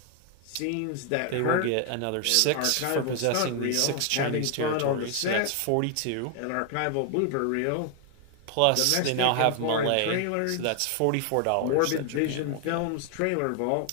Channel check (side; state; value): both; different; correlation 0.00